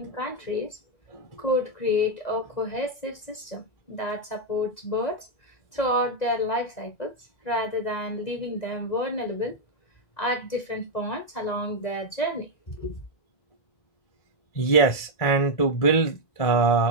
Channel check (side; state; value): right; late; 2.0 ms